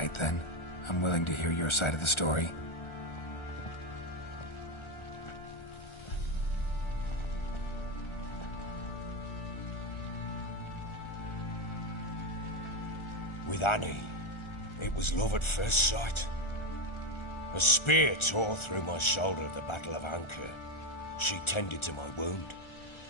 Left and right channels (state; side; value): late; right; 1.4 ms